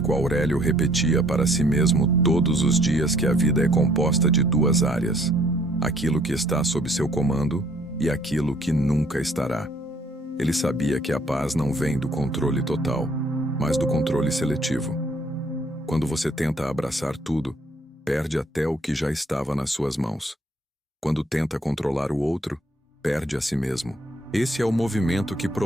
Aurélio repetia para si mesmo todos os dias que a vida é composta de duas áreas: aquilo que está sob seu comando e aquilo que nunca estará. Ele sabia que a paz não vem do controle total, mas do controle seletivo. Quando você tenta abraçar tudo, perde até o que já estava nas suas mãos. Quando tenta controlar o outro, perde a si mesmo. Esse é o movimento que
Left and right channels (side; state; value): both; normal; correlation 0.63